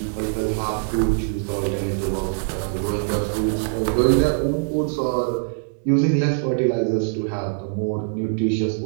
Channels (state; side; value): silent; left; digital silence